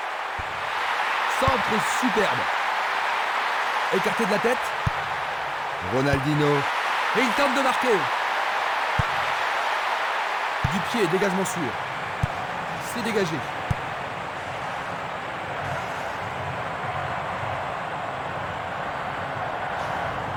Centre superbe. Écarté de la tête. Ronaldinho. Et il tente de marquer. Du pied, dégagement sûr. C'est dégagé.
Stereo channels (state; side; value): identical; both; correlation 1.00